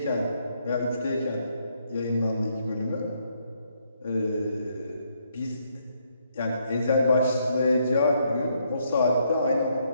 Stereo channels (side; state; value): both; inverted; correlation -0.74